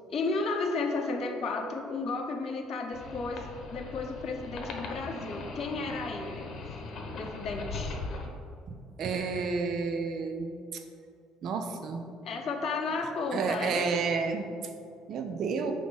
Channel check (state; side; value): normal; both; correlation 0.60